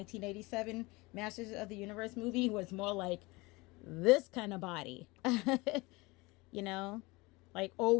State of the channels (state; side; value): quieter; right; 23.7 dB